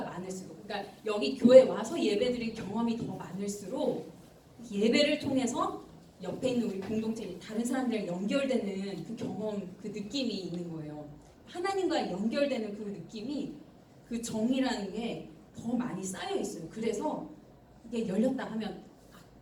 많을수록, 그러니까 여기 교회 와서 예배 드릴 경험이 더 많을수록 예배를 통해서 옆에 있는 우리 공동체 다른 사람들이랑 연결되는 그 경험, 그 느낌이 있는 거예요. 하나님과 연결되는 그 느낌이, 그 정이라는 게 더 많이 쌓여 있어요. 그래서 이게 열렸다 하면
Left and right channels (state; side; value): identical; both; correlation 1.00